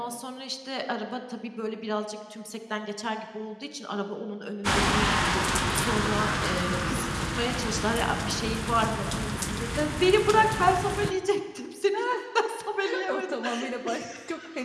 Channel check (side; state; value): both; identical; correlation 1.00